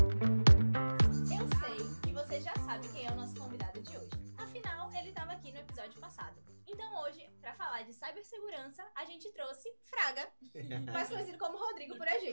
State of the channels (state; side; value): inverted; both; correlation -1.00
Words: que você já sabe quem é o nosso convidado de hoje. Afinal, ele estava aqui no episódio passado. Então hoje, para falar de cibersegurança, a gente trouxe Fraga, mais conhecido como Rodrigo por a